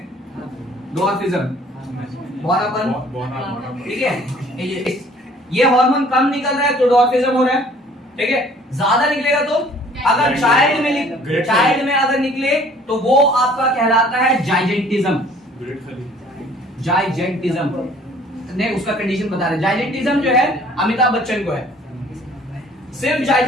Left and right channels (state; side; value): normal; both; correlation 0.54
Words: डॉर्फिज्म, बौनापन, ठीक है। ये हार्मोन कम निकल रहा है तो डॉर्फिज्म हो रहा है, ठीक है। ज्यादा निकलेगा तो, अगर चाइल्ड में अगर निकले तो वो आपका कहलाता है जाइजेंटिज्म, जाइजेंटिज्म ने उसका कंडीशन बता रहे। जाइजेंटिज्म जो है अमिताभ बच्चन को है, सिर्फ